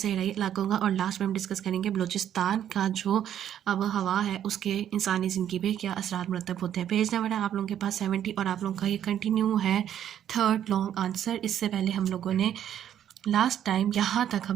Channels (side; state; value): left; quieter; 10.3 dB